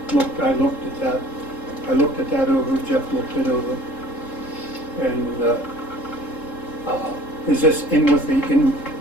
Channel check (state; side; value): late; right; 3.7 ms